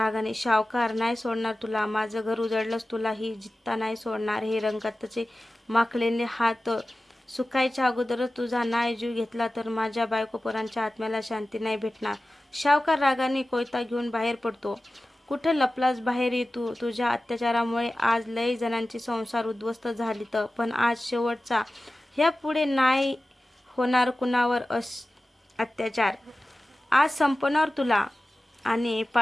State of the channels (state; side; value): normal; both; correlation 0.95